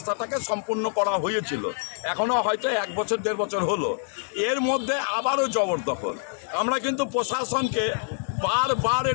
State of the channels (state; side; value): silent; right; digital silence